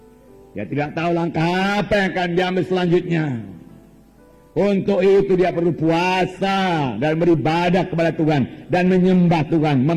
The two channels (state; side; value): identical; both; correlation 1.00